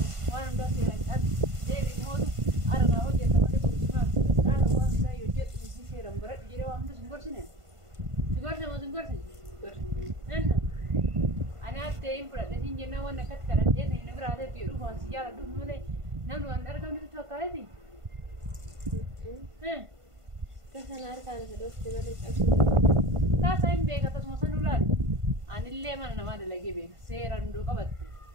وانا بس سلام تيجي موت أنا هو جت ما تقول أنا هو لا يوجد في سيرم برد جري وام تسمعور سنة سمعور أنا تيم برد لكن جنا وانا كت كرت جنا هنا براد تيرو فان سيجار دوم ملي نملو أنا كم تسوى كارتي كسر أركان خدوتي بلد أكثر Tasain beka tas mosan ular. Anille mana nama de lagi beka. Seran do kabat.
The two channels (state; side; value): late; left; 1.5 ms